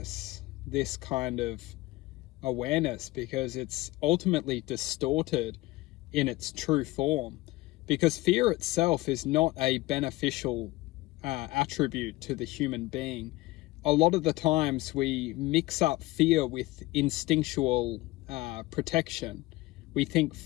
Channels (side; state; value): right; quieter; 19.6 dB